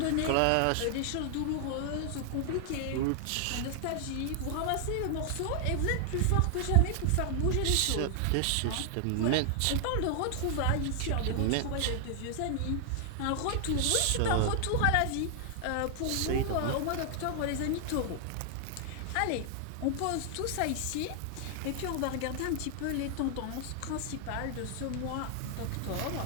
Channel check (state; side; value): different; both; correlation 0.00